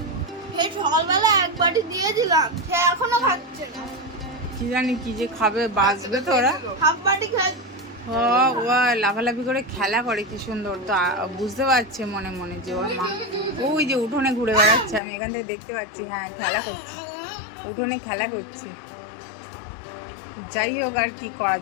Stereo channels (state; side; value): drops out; right; at 15.0 s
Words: এই সকালবেলা এক বাটি দিয়ে দিলাম, সে এখনো খাচ্ছে না। কি জানি কি যে খাবে, বাঁচবে তো ওরা। হাফ বাটি খায়। ও লাফালাফি করে খেলা করে কি সুন্দর, তো বুঝতে পারছে মনে মনে যে ওর মা ওই যে উঠোনে ঘুরে বেড়াচ্ছে, আমি এখান থেকে দেখতে পাচ্ছি। হ্যাঁ খেলা করছে, উঠোনে খেলা করছে। যাই হোক আর কি করা